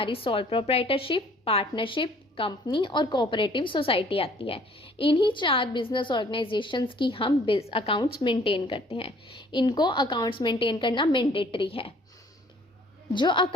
सोल प्रोप्राइटरशिप, पार्टनरशिप, कंपनी और कोऑपरेटिव सोसाइटी आती है। इन्हीं 4 बिजनेस ऑर्गेनाइजेशंस की हम अकाउंट्स मेंटेन करते हैं। इनको अकाउंट्स मेंटेन करना मैंडेटरी है। जो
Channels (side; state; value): both; normal; correlation 0.57